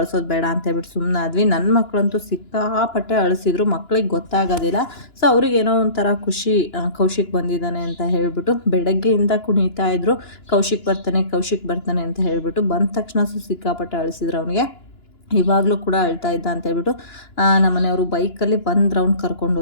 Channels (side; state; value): right; late; 2.9 ms